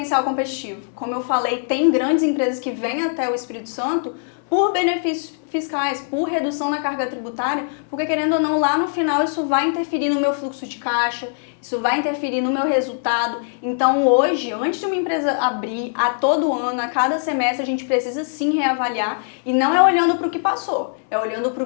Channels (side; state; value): right; silent; 65 dB below the other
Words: competitivo. Como eu falei, tem grandes empresas que vêm até o Espírito Santo por benefícios fiscais, por redução na carga tributária, porque, querendo ou não, lá no final isso vai interferir no meu fluxo de caixa, isso vai interferir no meu resultado. Então, hoje, antes de uma empresa abrir, a todo ano, a cada semestre, a gente precisa sim reavaliar, e não é olhando para o que passou, é olhando para o